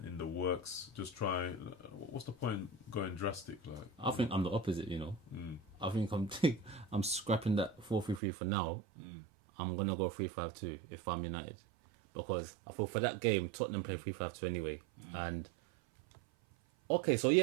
the works. Just try. What's the point going drastic? Like I think I'm the opposite. I think I'm scrapping that 4-3-3 for now. I'm gonna go 3-5-2 if I'm United, because I feel for that game Tottenham play 3-5-2 anyway. And okay, so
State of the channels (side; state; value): left; drops out; at 8.2 s